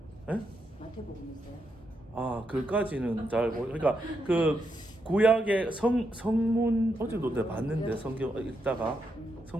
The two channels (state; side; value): normal; both; correlation 0.82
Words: 예? 마태복음 있어요? 그까지는 잘 모르. 그러니까 그 구약의 성문 어제도 내가 봤는데 성경 읽다가